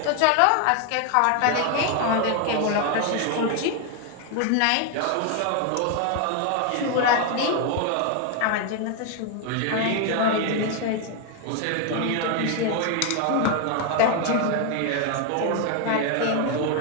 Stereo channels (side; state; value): both; different; correlation 0.01